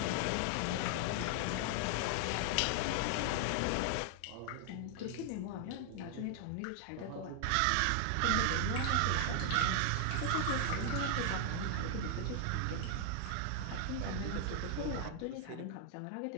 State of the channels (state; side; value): different; both; correlation 0.00